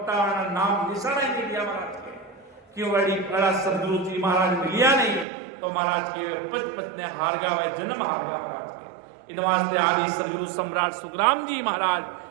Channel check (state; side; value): drops out; left; at 5.2 s